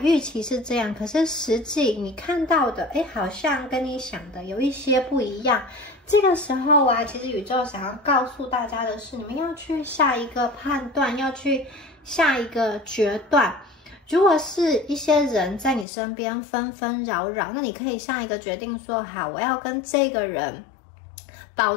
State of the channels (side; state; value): right; drops out; at 15.9 s